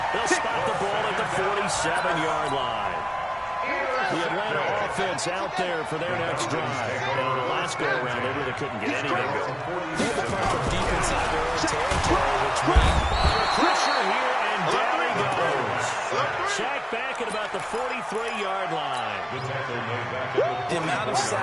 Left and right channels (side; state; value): both; identical; correlation 1.00